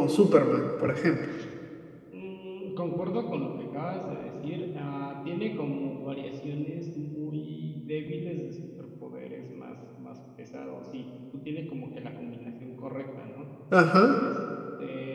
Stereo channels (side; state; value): both; identical; correlation 1.00